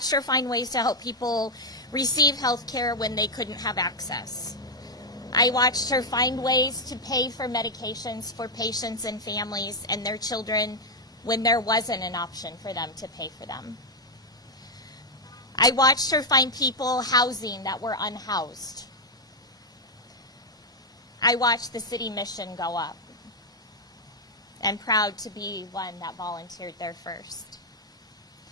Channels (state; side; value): normal; both; correlation 0.00